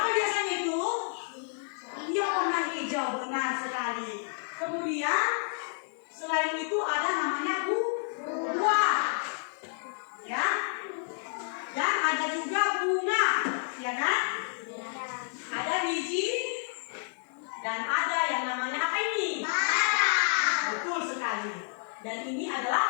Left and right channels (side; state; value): right; silent; digital silence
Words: biasanya itu? Yang warna hijau, benar sekali. Kemudian selain itu ada namanya buah, ya, dan ada juga bunga, ya kan? Ada biji dan ada yang namanya apa ini? Betul sekali. Dan ini